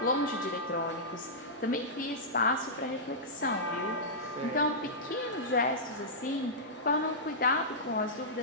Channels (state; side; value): normal; both; correlation -0.13